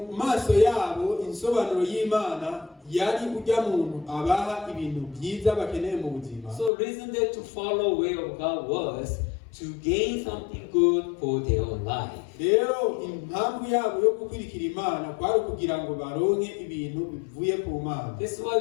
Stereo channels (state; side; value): drops out; right; at 6.7 s